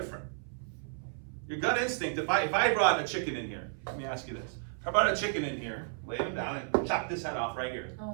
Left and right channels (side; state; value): left; silent; 56 dB below the other